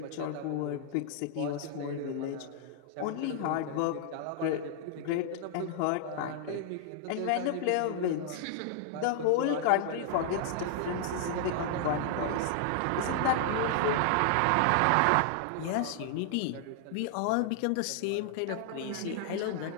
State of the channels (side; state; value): both; different; correlation -0.01